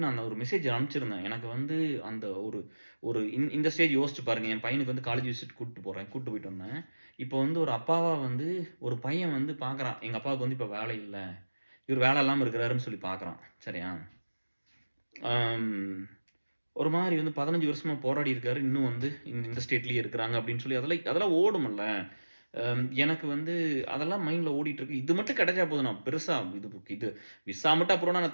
நான் அந்த ஒரு மெசேஜ் அனுப்பிச்சிருந்தேன். எனக்கு வந்து அந்த ஒரு ஒரு இந்த ஸ்டேஜ் யோசிச்சு பாருங்க. என் பையனுக்கு வந்து காலேஜ் விசிட் கூட்டிட்டு போறேன். கூட்டிட்டு போயிட்டு வந்தேன். இப்போ வந்து ஒரு அப்பாவா வந்து ஒரு பையன் வந்து பார்க்குறான். எங்க அப்பாவுக்கு வந்து இப்ப வேலை இல்ல. இவரு வேலை இல்லாம இருக்கிறாருன்னு சொல்லி பார்க்குறான். சரியா? அம் ஒரு மாரி வந்து 15 வருஷமா போராடி இருக்காரு. இன்னும் வந்து இந்த ஸ்டேட்லயே இருக்கிறாங்க அப்படின்னு சொல்லி அதெல்லாம் ஓடும்ல. எனக்கு வந்து அதெல்லாம் மைண்ட்ல ஓடிட்டு இருக்கு. இது மட்டும் கிடைச்சா போதும். நான் பெருசா இது விசா மட்டும் அப்புறம்னா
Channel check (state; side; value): inverted; both; correlation -1.00